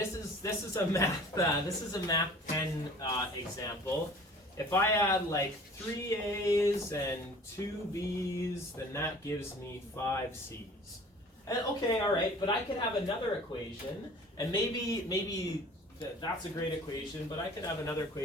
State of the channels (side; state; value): both; normal; correlation 0.47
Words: is a math 10 example. If I add like 3 A's and 2 B's, then that gives me 5 C's. And okay, all right, but I could have another equation, and maybe that's a great equation, but I could have another